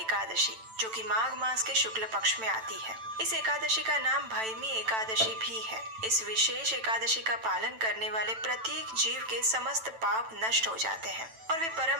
जो कि माघ मास के शुक्ल पक्ष में आती है। इस एकादशी का नाम भैमी एकादशी भी है। इस विशेष एकादशी का पालन करने वाले प्रत्येक जीव के समस्त पाप नष्ट हो जाते हैं और वे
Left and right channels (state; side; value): late; left; 9.0 ms